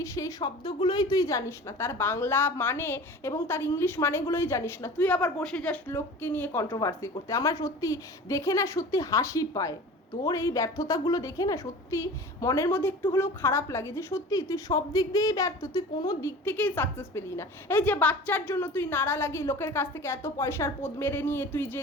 সেই শব্দগুলোই তুই জানিস না, তার বাংলা মানে এবং তার ইংলিশ মানেগুলোই জানিস না। তুই আবার বসে যাস লোককে নিয়ে কন্ট্রোভার্সি করতে। আমার সত্যি দেখে না সত্যি হাসি পায়। তোর এই ব্যর্থতাগুলো দেখে না সত্যি মনের মধ্যে একটু হলেও খারাপ লাগে, যে সত্যি তুই সব দিক দিয়েই ব্যর্থ, তুই কোনো দিক থেকেই সাকসেস পেলি না। এই যে বাচ্চার জন্য তুই নাড়া লাগিয়ে লোকের কাছ থেকে এত পয়সার পদ মেরে নিয়ে তুই যে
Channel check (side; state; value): both; normal; correlation 0.39